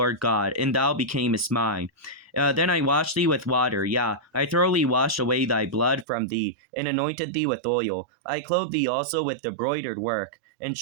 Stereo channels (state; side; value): drops out; left; at 6.1 s